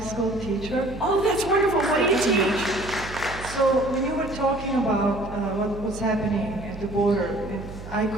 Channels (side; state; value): right; noise; hum, 12 dB below the sound